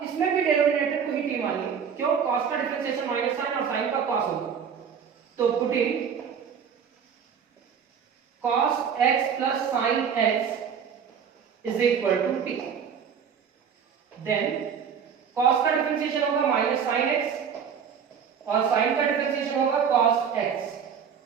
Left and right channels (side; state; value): left; quieter; 7.2 dB